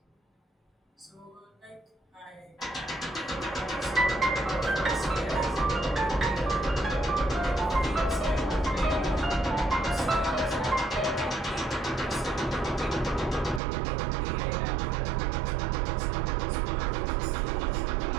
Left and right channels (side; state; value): left; drops out; at 13.6 s